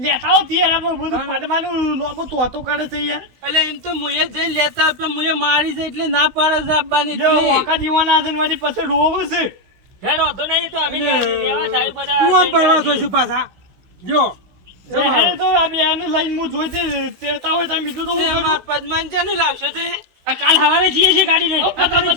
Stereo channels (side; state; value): left; late; 16 ms